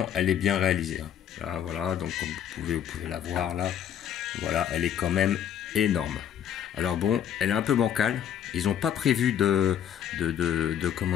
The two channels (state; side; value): quieter; right; 9.5 dB